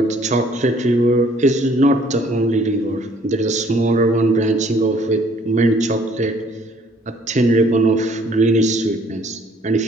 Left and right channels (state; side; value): normal; both; correlation 0.59